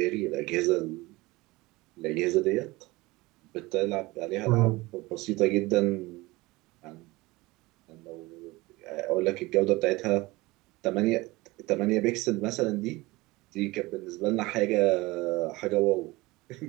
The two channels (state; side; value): quieter; left; 21.4 dB